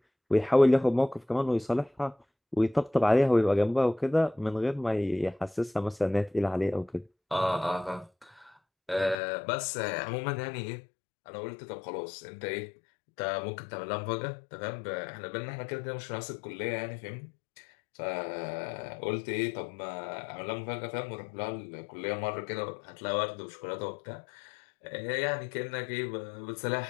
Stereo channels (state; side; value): drops out; right; at 9.2 s